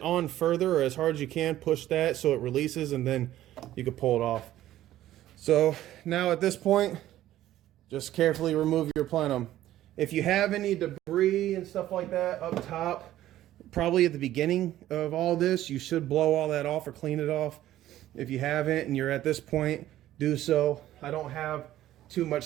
on further or as hard as you can, push that so it releases and then you can pull it off. So now at this point, just carefully remove your plenum. If you have any debris and stuff like that up top, probably at the beginning of all this, you should blow all that off or clean it off. If you haven't and you're at this point, do so. I don't have too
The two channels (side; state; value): left; quieter; 13.6 dB